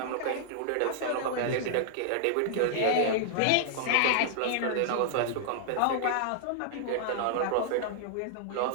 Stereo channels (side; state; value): both; different; correlation -0.01